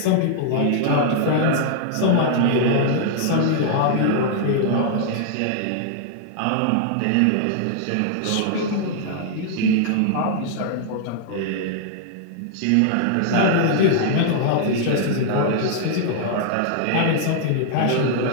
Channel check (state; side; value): different; both; correlation -0.01